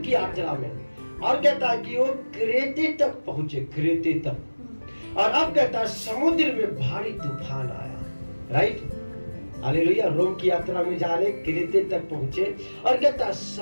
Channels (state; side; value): inverted; both; correlation -1.00